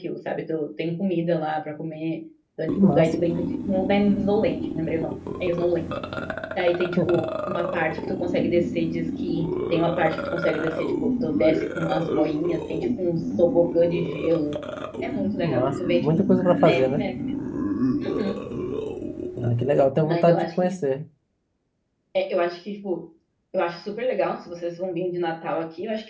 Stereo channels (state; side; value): identical; both; correlation 1.00